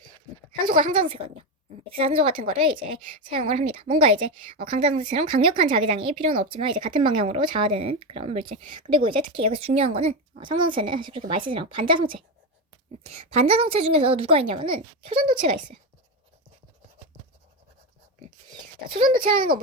산소가 상자성체거든요. 액체산소 같은 거를 이제 사용을 합니다. 뭔가 이제 강자성체처럼 강력한 자기장이 필요는 없지만 이제 같은 방향으로 자화되는 그런 물질. 그리고 이제 특히 여기서 중요한 거는 상자성체는 사실 그렇게 많이 쓰지 않고 반자성체. 반자성체 중에서 누가 있냐면은 초전도체가 있어요. 자, 초전도체라는 건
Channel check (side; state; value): both; normal; correlation 0.13